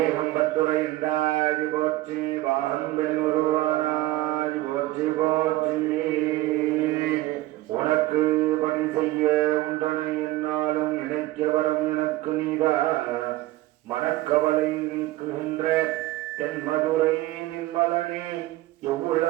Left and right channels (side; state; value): left; quieter; 17.3 dB